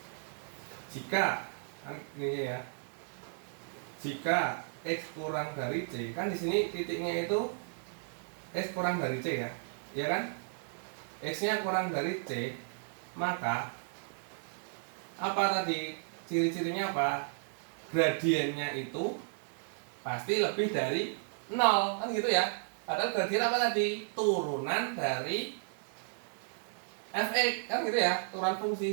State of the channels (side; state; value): left; silent; digital silence